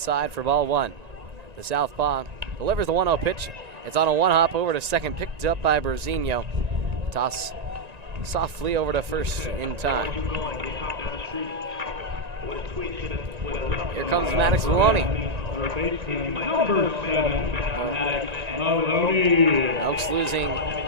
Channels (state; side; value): late; left; 1.9 ms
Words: for ball one. The southpaw delivers the 1-0 pitch. It's on a one-hop over to second, picked up by Brazinho. Toss softly over to first in time. Here comes Maddox Maloney. Number 7, Maddox Maloney. Elks losing